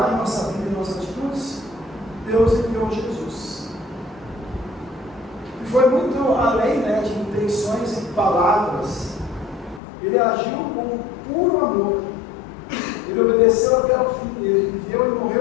a nossa vida e nossas atitudes, Deus enviou Jesus. E foi muito além, né, de intenções e palavras. Ele agiu com puro amor. Ele obedeceu até o fim. Ele viveu e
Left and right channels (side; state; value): right; drops out; at 9.8 s